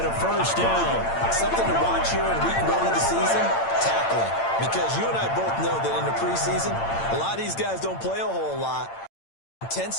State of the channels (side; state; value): right; late; 8.8 ms